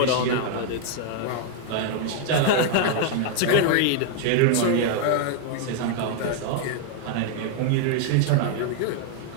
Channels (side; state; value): both; different; correlation 0.00